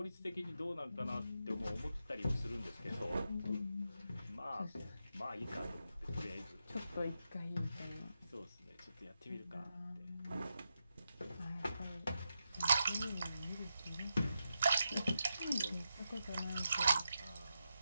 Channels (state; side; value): inverted; both; correlation -0.86